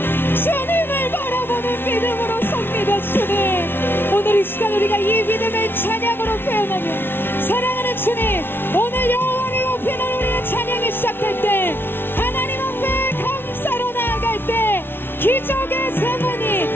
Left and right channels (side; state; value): right; late; 0.11 ms